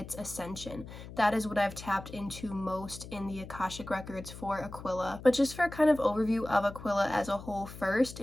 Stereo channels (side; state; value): left; noise; hum, 13 dB below the sound